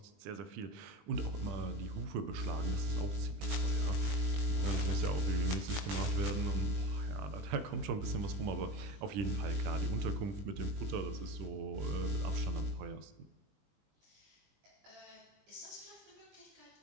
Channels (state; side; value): late; left; 20 ms